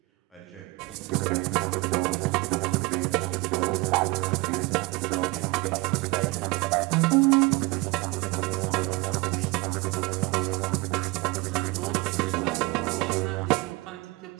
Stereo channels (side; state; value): left; quieter; 23.6 dB